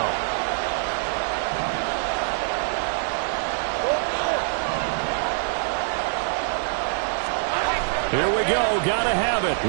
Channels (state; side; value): silent; left; digital silence